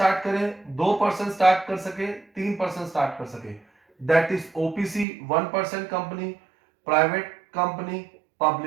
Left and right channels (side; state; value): left; drops out; at 5.1 s